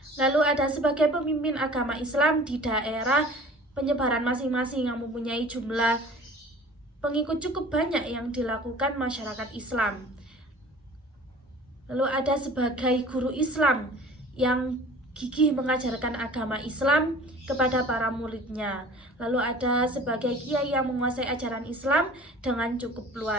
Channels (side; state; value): both; normal; correlation 0.45